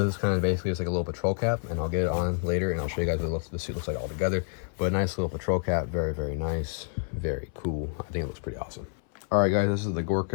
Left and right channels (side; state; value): right; silent; 59 dB below the other